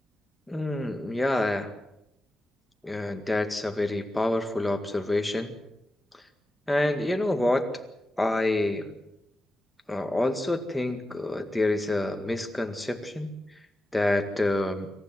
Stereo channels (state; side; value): normal; both; correlation 0.91